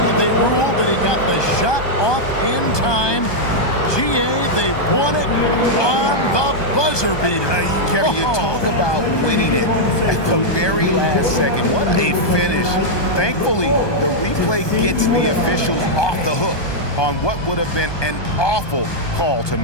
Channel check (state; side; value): late; right; 1.2 ms